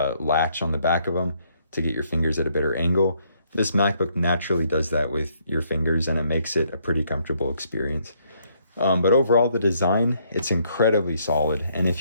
on the back of them to get your fingers at a better angle. This MacBook naturally does that with your fingers, and it makes it a pretty comfortable experience. But overall, the design, it's incredibly solid. And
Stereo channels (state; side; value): inverted; both; correlation -0.70